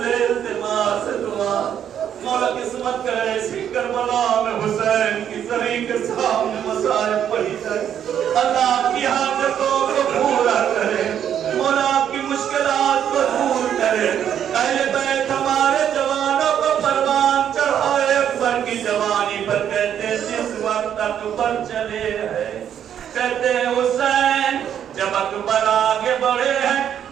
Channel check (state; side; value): quieter; left; 9.4 dB